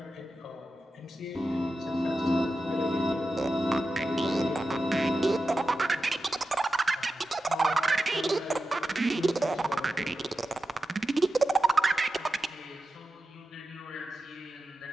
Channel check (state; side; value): normal; both; correlation 0.92